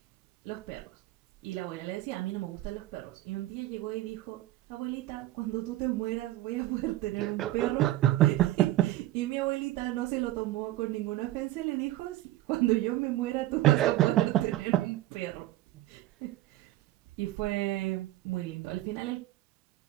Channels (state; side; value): quieter; left; 15.6 dB